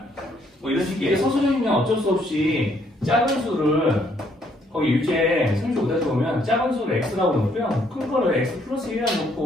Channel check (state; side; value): normal; both; correlation 0.69